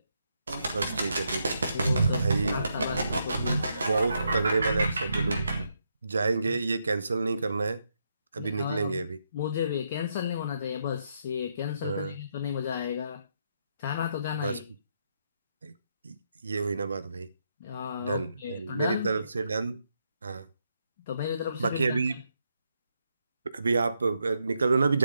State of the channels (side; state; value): both; inverted; correlation -0.79